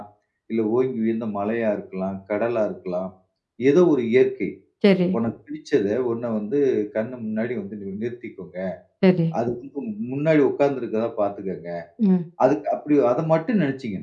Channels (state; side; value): identical; both; correlation 1.00